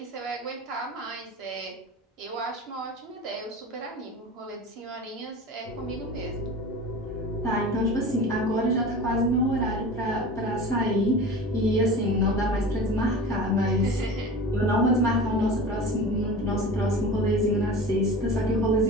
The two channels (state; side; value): normal; both; correlation 0.34